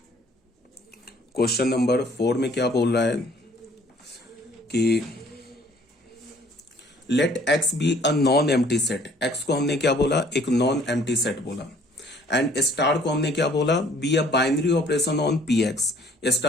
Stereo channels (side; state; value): both; normal; correlation 0.57